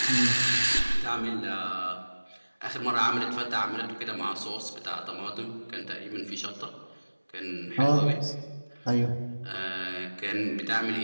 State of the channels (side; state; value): both; inverted; correlation -1.00